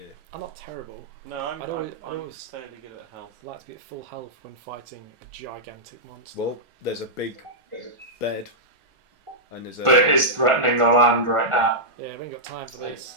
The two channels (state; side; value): late; left; 1.4 ms